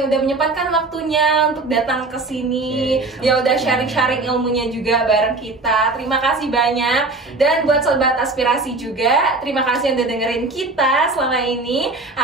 udah menyempatkan waktunya untuk datang ke sini. Ya udah sharing-sharing ilmunya juga bareng kita. Terima kasih banyak. Dan buat sobat aspirasi juga, terima kasih yang udah dengerin kita selama ini.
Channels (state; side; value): quieter; left; 3.4 dB